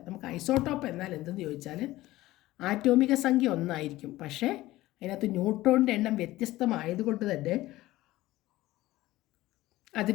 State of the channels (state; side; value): quieter; right; 17.2 dB